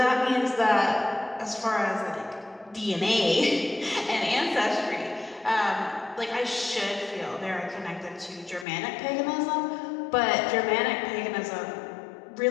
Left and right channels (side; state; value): right; drops out; at 8.7 s